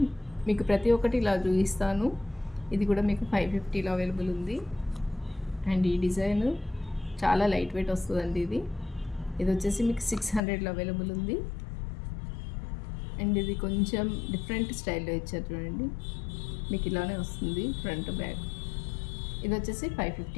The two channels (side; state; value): right; drops out; at 10.4 s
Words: మీకు ప్రతి ఒక్కటి ఇలా చూపిస్తాను. ఇది కూడా మీకు 550లో అవైలబుల్ ఉంది. అండ్ ఈ డిజైన్ చాలా లైట్ వెయిట్ వస్తుందండి. ఇది వచ్చేసి మీకు 600లో అవైలబుల్ ఉంది. అండ్ ఇది కొంచెం డిఫరెంట్ స్టైల్లో ఇచ్చారు చూడండి, మీకు ఇలానే వస్తుంది ఫ్రంట్ బ్యాక్. ఇది వచ్చేసి